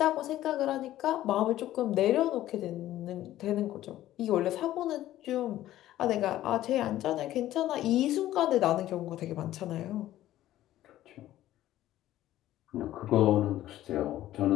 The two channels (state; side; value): quieter; right; 13.9 dB